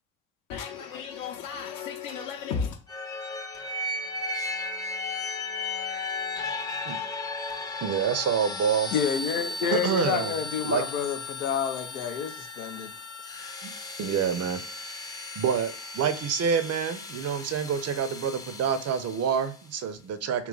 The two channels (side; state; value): both; normal; correlation -0.08